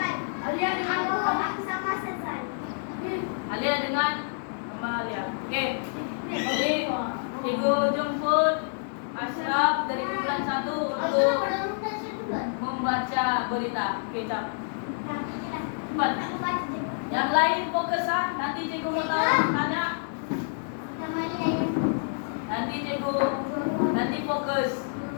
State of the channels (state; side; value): silent; right; digital silence